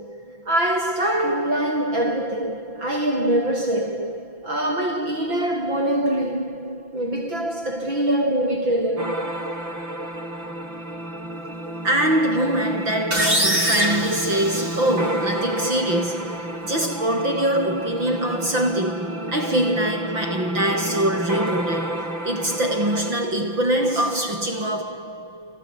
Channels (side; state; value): left; late; 5.9 ms